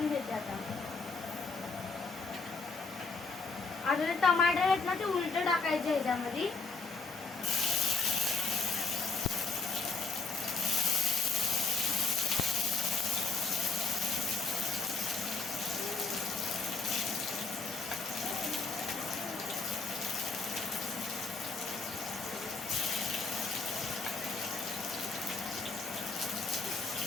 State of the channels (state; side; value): quieter; right; 4.3 dB